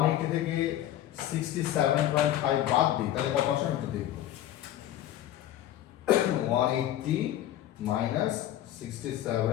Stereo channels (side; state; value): right; quieter; 12.5 dB